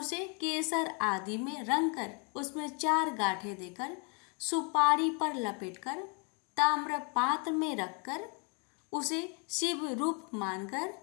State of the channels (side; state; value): right; quieter; 35.4 dB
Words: केसर आदि में रंग कर उसमें 4 गांठें देकर सुपारी पर लपेटकर ताम्र पात्र में रखकर उसे शिव रूप मानकर